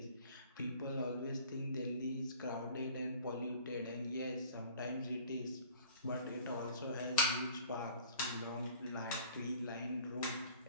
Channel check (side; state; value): both; inverted; correlation -0.48